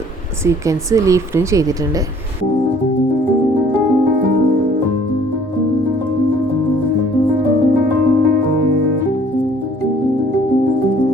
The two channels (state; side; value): normal; both; correlation 0.56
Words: സീക്വൻസ് ലീഫിലും ചെയ്തിട്ടുണ്ട്.